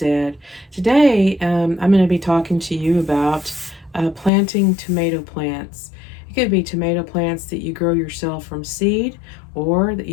Today, I'm going to be talking to you about planting tomato plants. It could be tomato plants that you grow yourself from seed or that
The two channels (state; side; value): drops out; right; at 4.3 s